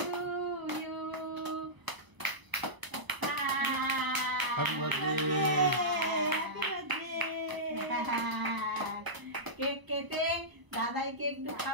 you. Happy birthday. Cake কেটে দাদাইকে একটু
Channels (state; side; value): late; left; 1.0 ms